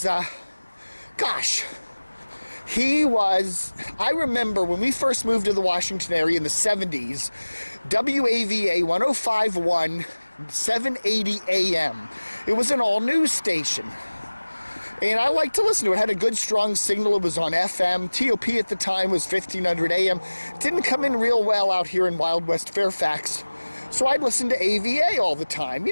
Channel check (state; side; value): inverted; both; correlation -1.00